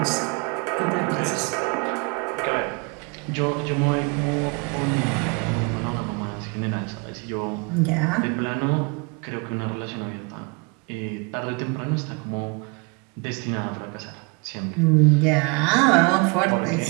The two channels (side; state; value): left; quieter; 31.2 dB